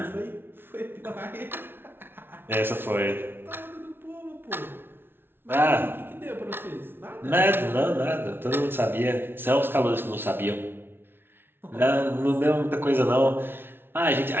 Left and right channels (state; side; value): late; left; 0.11 ms